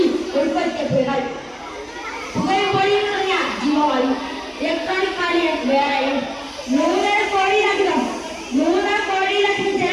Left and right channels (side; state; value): both; identical; correlation 1.00